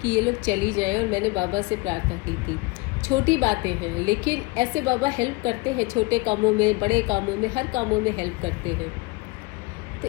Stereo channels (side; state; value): right; quieter; 24.8 dB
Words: कि ये लोग चली जाएं, और मैंने बाबा से प्रार्थना की थी। छोटी बातें हैं, लेकिन ऐसे बाबा हेल्प करते हैं, छोटे कामों में, बड़े कामों में, हर कामों में हेल्प करते हैं। तो